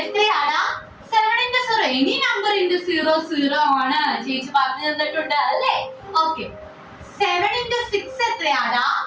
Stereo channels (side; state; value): both; identical; correlation 1.00